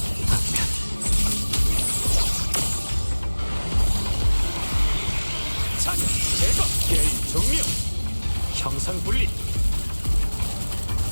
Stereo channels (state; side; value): inverted; both; correlation -1.00